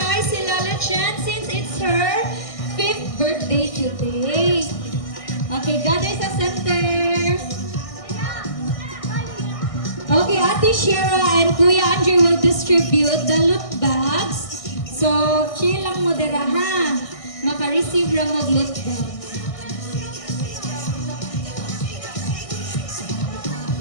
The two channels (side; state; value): right; late; 1.6 ms